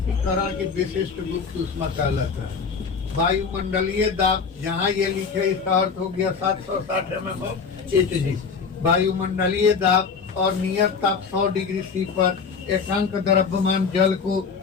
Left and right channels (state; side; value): quieter; right; 5.6 dB